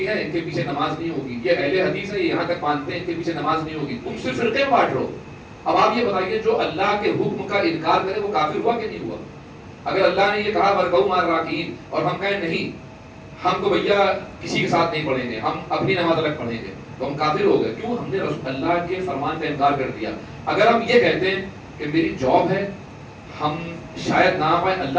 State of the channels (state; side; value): identical; both; correlation 1.00